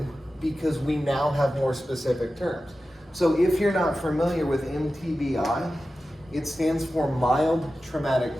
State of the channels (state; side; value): normal; both; correlation 0.93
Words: because we now have more specific terms. So if you're not familiar with MTBI, it stands for mild traumatic